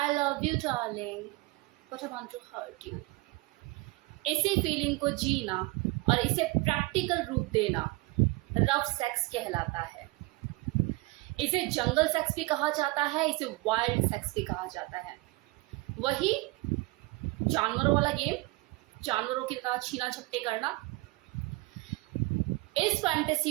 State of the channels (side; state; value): left; quieter; 22.7 dB